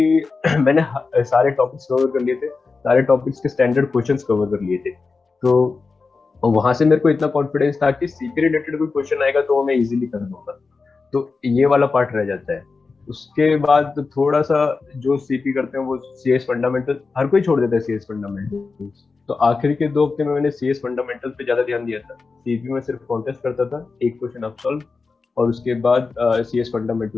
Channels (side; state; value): right; quieter; 4.3 dB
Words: मैंने सारे टॉपिक्स कवर कर लिए थे, सारे टॉपिक्स के स्टैंडर्ड क्वेश्चंस कवर कर लिए थे। तो वहां से मेरे को इतना कॉन्फिडेंस था कि सीपी रिलेटेड कोई क्वेश्चन आएगा तो वो मैं इजीली कर दूंगा। तो ये वाला पार्ट रह जाता है। उसके बाद थोड़ा सा जो सीपी करते हैं वो सीएस फंडामेंटल, हर कोई छोड़ देता है सीएस फंडामेंटल। तो आखिर के 2 हफ्ते में मैंने सीएस फंडामेंटल पे ज्यादा ध्यान दिया था, सीपी में सिर्फ कॉन्टेस्ट करता था, एक क्वेश्चन अप सॉल्व, और उसके बाद सीएस